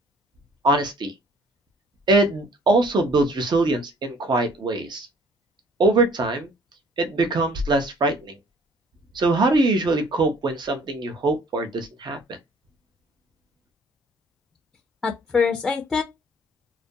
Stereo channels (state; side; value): normal; both; correlation 0.56